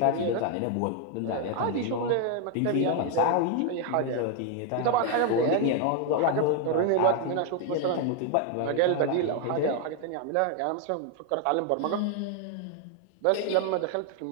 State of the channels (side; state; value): both; different; correlation 0.00